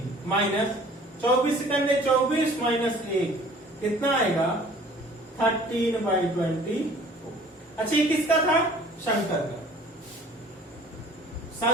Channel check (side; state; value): both; normal; correlation 0.51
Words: माइनस 24 सेकंड 24 माइनस 1, कितना आएगा? 13/24। अच्छा, ये किसका था? शंकर का।